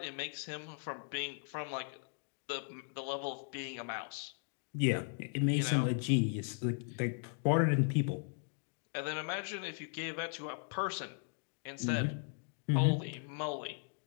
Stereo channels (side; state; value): right; silent; 53 dB below the other